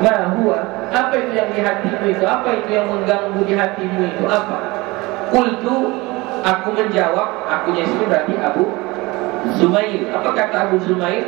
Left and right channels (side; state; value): left; quieter; 22.7 dB